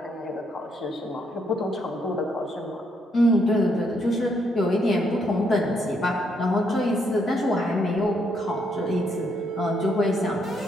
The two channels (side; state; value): both; normal; correlation 0.74